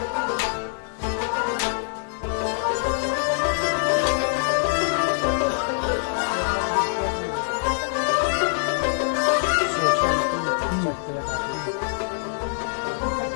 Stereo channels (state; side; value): silent; right; digital silence